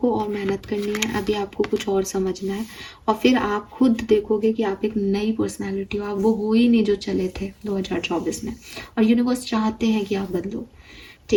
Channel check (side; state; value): both; identical; correlation 1.00